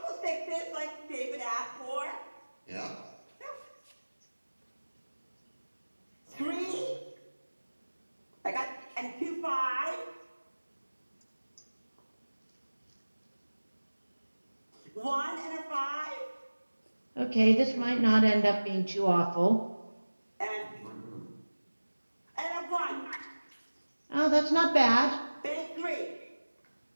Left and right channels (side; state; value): both; inverted; correlation -1.00